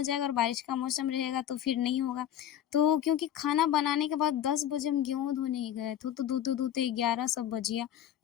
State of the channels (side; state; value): right; quieter; 10.8 dB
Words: जाएगा और बारिश का मौसम रहेगा तो फिर नहीं होगा। तो क्योंकि खाना बनाने के बाद 10 बजे हम गेहूँ धोने ही गए थे, तो धोते-धोते 11 सब बज गया।